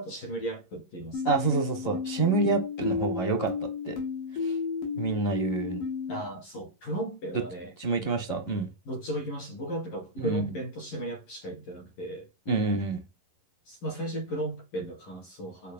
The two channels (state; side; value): late; right; 11 ms